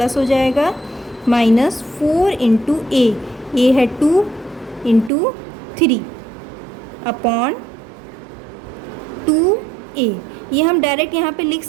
हो जाएगा माइनस 4 इंटू ए है 2 इंटू 3 अपॉन 2a। ये हम डायरेक्ट यहाँ पे लिख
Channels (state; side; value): drops out; left; at 5.1 s